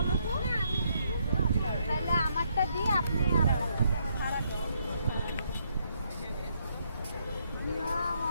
তো। তাহলে আমারটা দিয়ে আপনি আপনারটা দেবেন। ভাড়া দেন।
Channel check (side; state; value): both; inverted; correlation -0.74